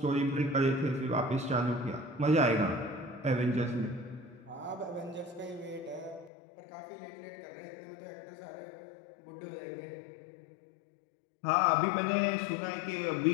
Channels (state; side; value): drops out; right; at 6.3 s